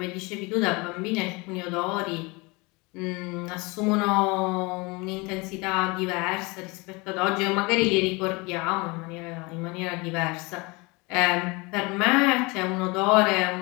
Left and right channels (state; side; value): quieter; right; 26.4 dB